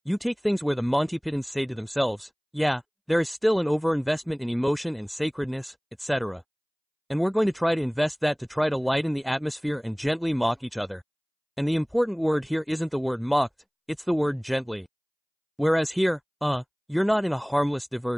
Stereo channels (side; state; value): both; identical; correlation 1.00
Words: you take things where the Monty Pythons say to themselves, yeah, there is still an overinvestment in emotion and sacredness, etc. And we're going to try to invest that to try to lighten the atmosphere and gently mock each other. And the important word here isn't the word mocked, it's the word gently. Whereas here, you're not in a harmless